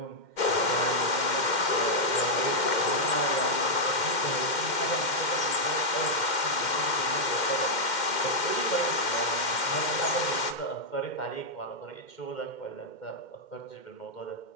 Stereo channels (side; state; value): right; late; 2.1 ms